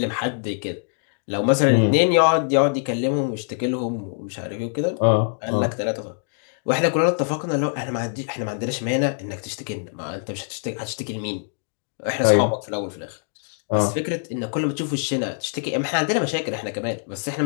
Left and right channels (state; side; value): silent; right; digital silence